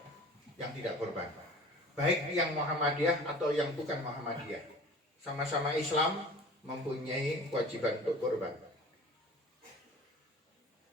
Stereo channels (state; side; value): normal; both; correlation 0.43